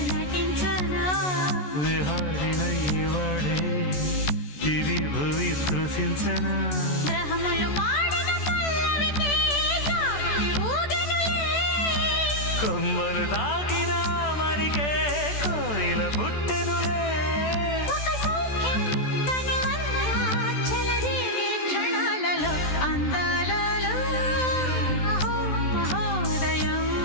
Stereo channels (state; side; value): late; right; 14 ms